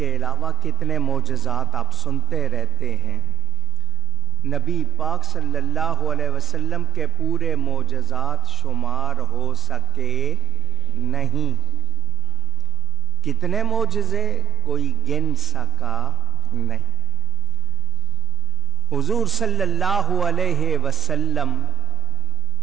علاوہ کتنے معجزات آپ سنتے رہتے ہیں۔ نبی پاک صلی اللہ علیہ وسلم کے پورے معجزات شمار ہو سکے نہیں۔ کتنے معجزے کوئی گن سکا نہیں۔ حضور صلی اللہ علیہ وسلم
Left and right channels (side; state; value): both; normal; correlation 0.43